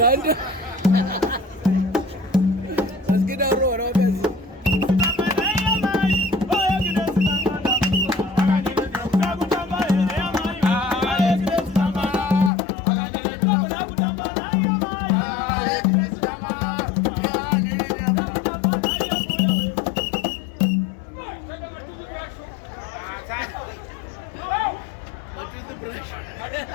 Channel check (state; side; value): drops out; right; at 12.5 s